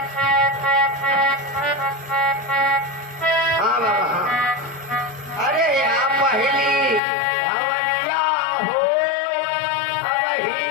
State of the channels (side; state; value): right; drops out; at 7.0 s